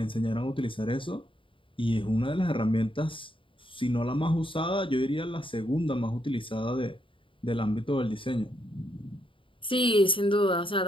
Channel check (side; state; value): right; late; 0.25 ms